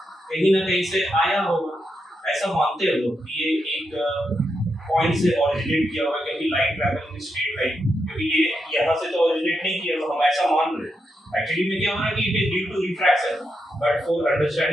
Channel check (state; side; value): normal; both; correlation 0.84